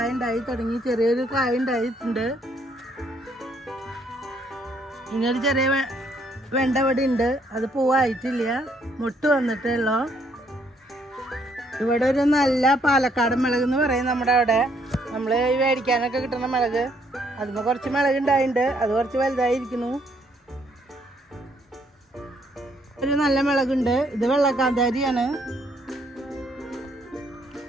ഉണ്ടായി തുടങ്ങി. ചെറിയൊരു കായ ഉണ്ടായിട്ടുണ്ട്. ഇങ്ങനൊരു ചെറിയ വെണ്ട ഇവിടെ ഉണ്ട്, അത് പൂവായിട്ടില്ല, മുട്ട് വന്നിട്ടുള്ളൂ. ഇവിടെ ഒരു നല്ല പാലക്കാട് മുളക് എന്ന് പറയും നമ്മുടെ അവിടെ. നമ്മൾ ഈ മേടിക്കാനൊക്കെ കിട്ടുന്ന മുളക്, അതിന് കുറച്ച് മുളക് ഉണ്ടായിട്ടുണ്ട്. അത് കുറച്ച് വലുതായിരിക്കുന്നു. ഒരു നല്ല മുളകുണ്ട്. ഇത് വെള്ളക്കാന്താരിയാണ്.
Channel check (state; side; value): normal; both; correlation 0.69